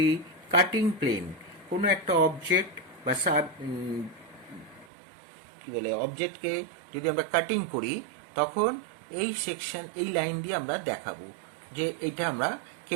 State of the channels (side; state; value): left; drops out; at 4.9 s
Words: কাটিং প্লেন. কোনো একটা অবজেক্ট বা অবজেক্টকে যদি আমরা কাটিং করি, তখন এই সেকশন, এই লাইন দিয়ে আমরা দেখাবো যে এটা আমরা